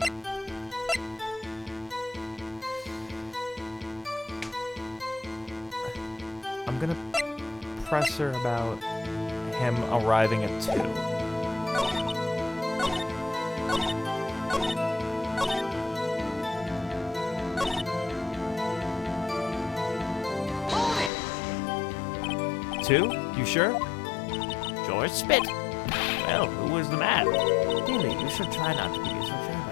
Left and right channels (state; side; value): drops out; right; at 21.1 s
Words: I'm gonna press her about him arriving at 2. Two? You sure? George Spit. Well, who was the man? Really, you should try not to be so